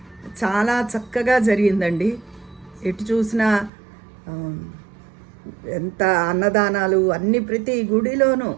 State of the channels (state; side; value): drops out; left; at 3.7 s